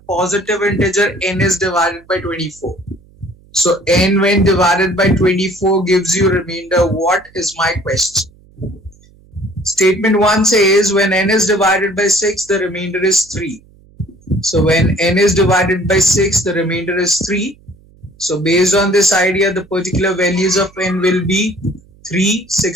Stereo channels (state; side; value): noise; right; hum, 28 dB below the sound